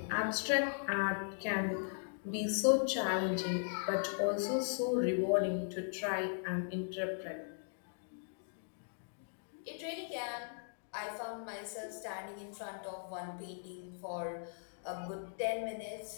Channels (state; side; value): silent; right; digital silence